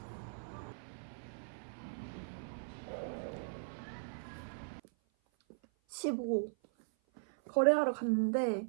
15. 거래하러 갔는데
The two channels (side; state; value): left; silent; 52 dB below the other